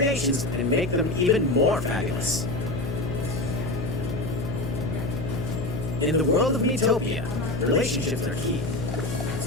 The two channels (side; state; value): left; noise; hum, 4 dB below the sound